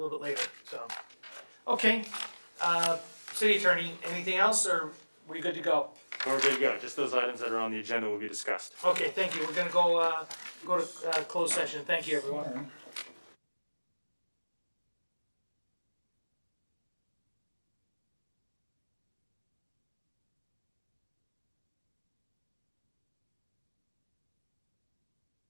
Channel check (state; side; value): inverted; both; correlation -1.00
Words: bit later, so. Okay, City Attorney, anything else, or we good to go? We're good to go. Just those items that are on the agenda will be discussed. Okay, thank you, we're gonna go to closed session, thank you, everyone.